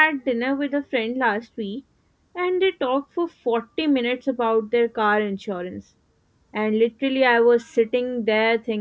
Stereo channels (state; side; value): identical; both; correlation 1.00